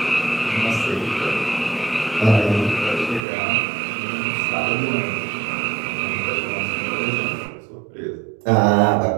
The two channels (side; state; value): left; drops out; at 3.2 s